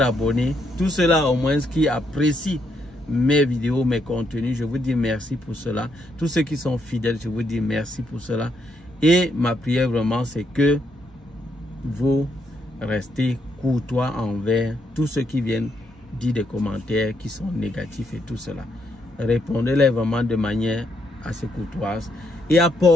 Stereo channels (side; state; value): both; normal; correlation 0.76